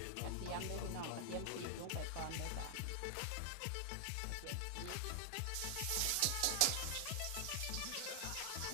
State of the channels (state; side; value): different; both; correlation 0.00